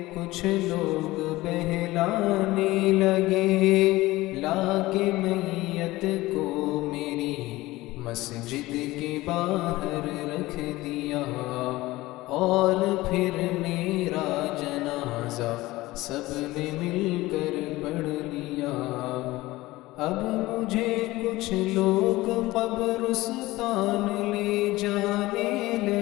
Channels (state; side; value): quieter; right; 18.8 dB